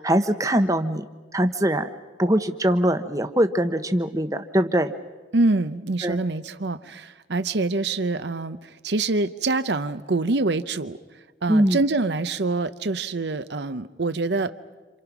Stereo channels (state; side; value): normal; both; correlation 0.59